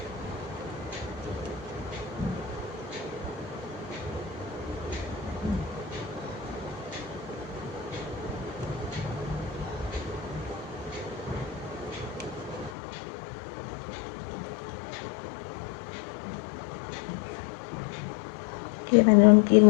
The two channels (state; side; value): drops out; right; at 12.8 s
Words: ये मैंने उनकी